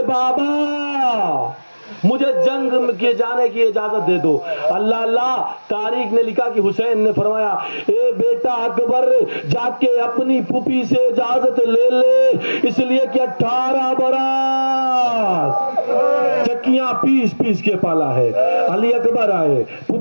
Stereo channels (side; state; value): both; inverted; correlation -1.00